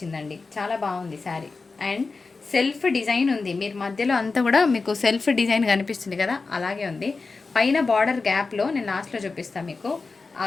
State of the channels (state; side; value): quieter; right; 4.1 dB